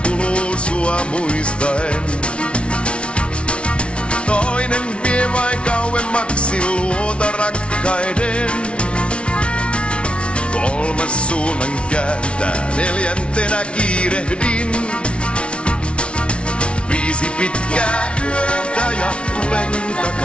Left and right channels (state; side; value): late; right; 0.059 ms